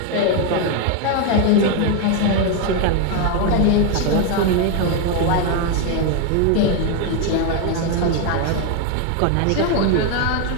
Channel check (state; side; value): different; both; correlation 0.01